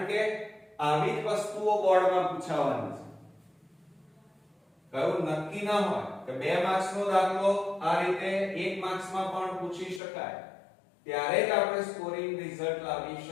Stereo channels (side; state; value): right; drops out; at 10.0 s